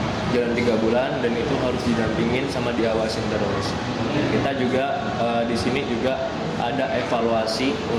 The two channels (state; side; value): identical; both; correlation 1.00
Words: Jalan 3 bulan dan itu harus didampingin sama diawasin terus. Kita juga di sini juga ada evaluasi